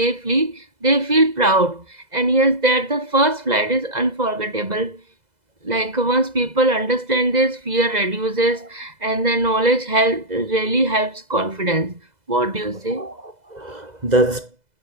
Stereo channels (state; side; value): late; left; 2.0 ms